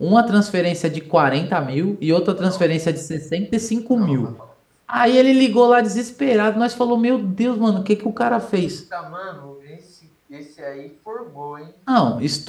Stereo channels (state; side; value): identical; both; correlation 1.00